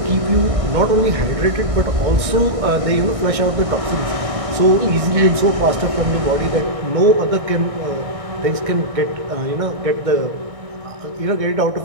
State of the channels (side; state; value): left; late; 1.6 ms